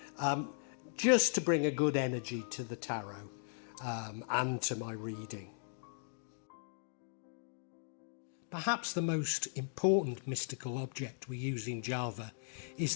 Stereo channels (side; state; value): right; silent; digital silence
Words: just to bring a good energy to the tarot and to my reading. Perhaps the most important mystical object we use in Java is